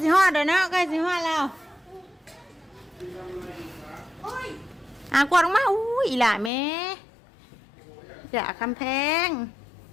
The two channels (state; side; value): drops out; right; at 6.5 s